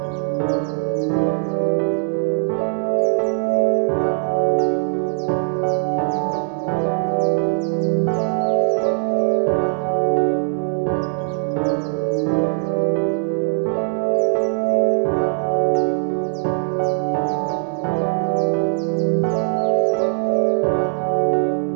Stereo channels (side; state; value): left; silent; 66 dB below the other